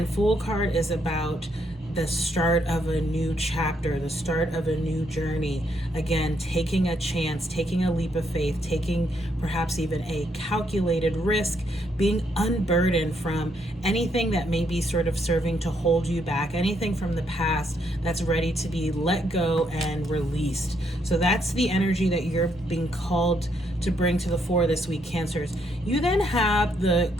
Fool card is about the start of a new chapter, the start of a new journey. Again, taking a chance, taking a leap of faith, taking perhaps even a calculated risk, being unburdened from anything that may be sort of serving to hold you back, anything from the past that's ready to be let go and released. So that's the energy that you're being called to bring to the fore this week, Cancers. You then have the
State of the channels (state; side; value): normal; both; correlation 0.74